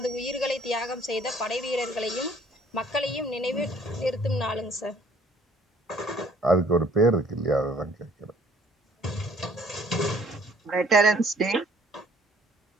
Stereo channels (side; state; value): both; normal; correlation 0.58